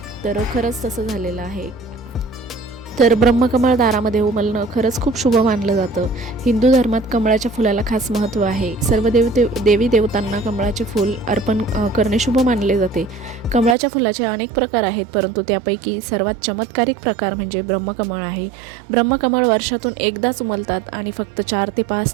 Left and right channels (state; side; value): drops out; left; at 13.8 s